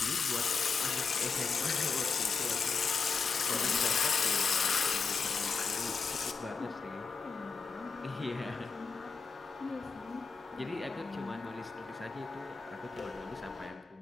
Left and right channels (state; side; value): quieter; right; 5.0 dB